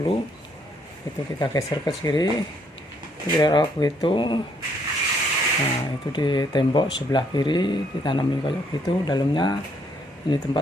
Itu kita geser ke kiri, kira-kira begitu. Nah, itu di tembok sebelah kiri ditanamin kayak gitu. Dalamnya ini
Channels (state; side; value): normal; both; correlation 0.69